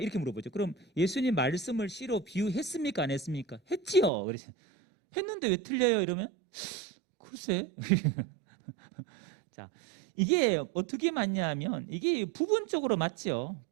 물어보죠. 그럼 예수님 말씀을 씨로 비유했습니까, 안 했습니까? 했지요. 그래서 했는데 왜 틀려요? 이러면 글쎄. 자, 이게 어떻게 맞냐면 이게 부분적으로 맞죠.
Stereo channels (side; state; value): left; drops out; at 4.1 s